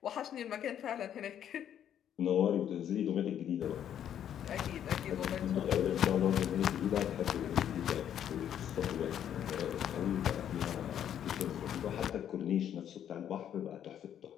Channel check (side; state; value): right; quieter; 9.8 dB